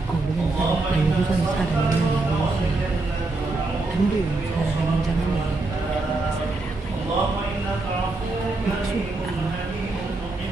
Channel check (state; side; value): quieter; left; 3.2 dB